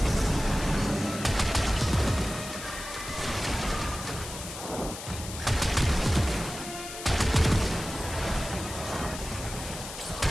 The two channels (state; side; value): noise; left; hiss, 10 dB below the sound